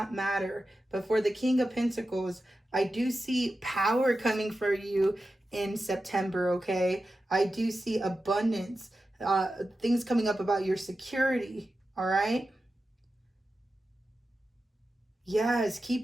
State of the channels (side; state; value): both; normal; correlation 0.92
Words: matter. But for the King of Pentacles, I do see power coming for you in September, okay? I do see abundance, things coming up about your security, all right? Yes,